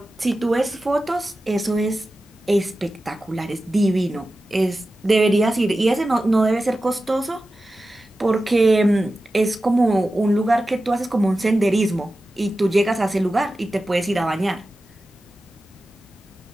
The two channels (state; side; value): normal; both; correlation 0.94